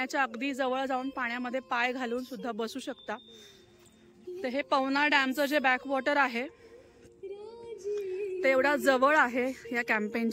अगदी जवळ जाऊन पाण्यामध्ये पाय घालून सुद्धा बसू शकता. तर हे पवना डॅमचं जे बॅकवॉटर आहे ते एवढा जवळ आहे या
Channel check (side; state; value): both; identical; correlation 1.00